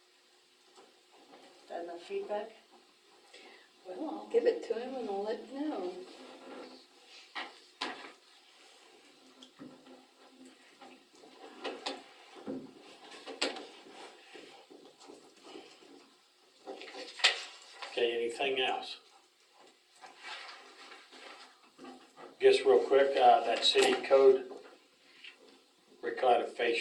That enough feedback? Well, I'll give it to him and I'll let you know. Okay, anything else? Guess real quick, that city code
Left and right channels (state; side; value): identical; both; correlation 1.00